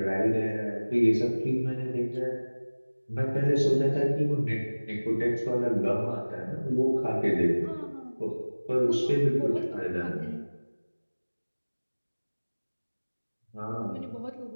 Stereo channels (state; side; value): inverted; both; correlation -1.00